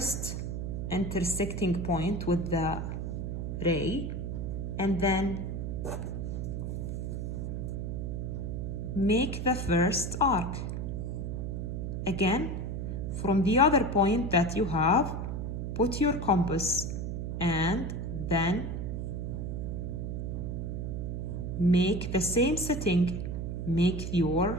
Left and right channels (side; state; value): right; noise; hum, 3 dB below the sound